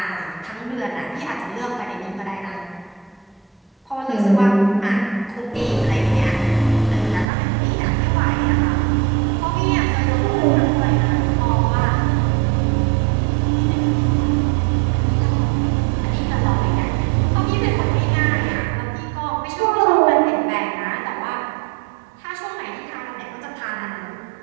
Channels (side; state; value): left; drops out; at 7.2 s